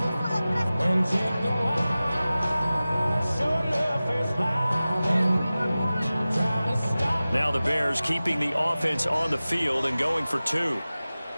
Now the Bears keeping the offense on the field and going for 2.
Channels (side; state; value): both; inverted; correlation -0.97